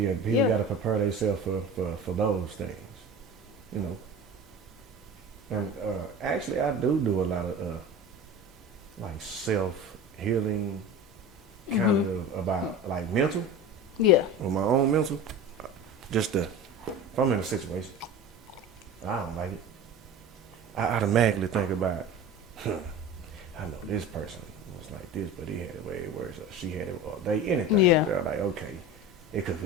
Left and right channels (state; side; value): normal; both; correlation 0.33